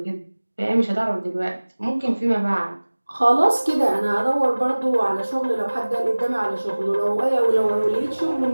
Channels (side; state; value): both; inverted; correlation -1.00